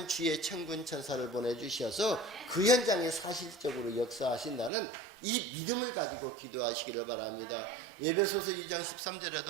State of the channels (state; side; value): drops out; left; at 4.7 s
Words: 주의 천군 천사를 보내주셔서 그 현장에 사실적으로 역사하신다는 이 믿음을 가지고 기도하시기를 바랍니다. 에베소서 2장